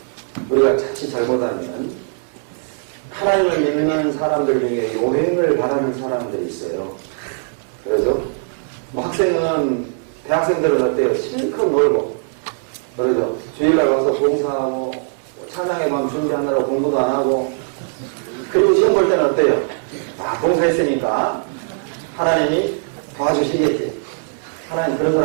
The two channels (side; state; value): left; silent; digital silence